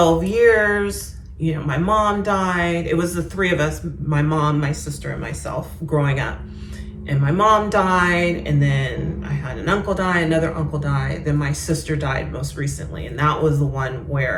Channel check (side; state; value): both; identical; correlation 1.00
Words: years, my mom died. It was the three of us, my mom, my sister, and myself growing up. And my mom died, and then I had an uncle die, another uncle died, then my sister died most recently. And that was the one